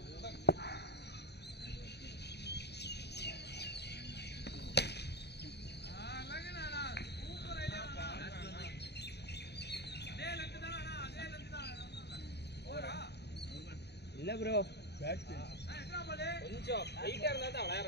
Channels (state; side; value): late; right; 0.49 ms